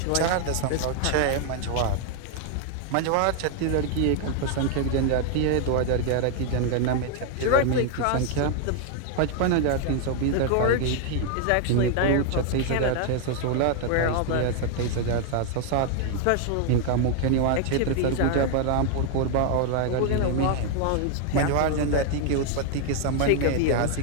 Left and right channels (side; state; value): both; different; correlation 0.00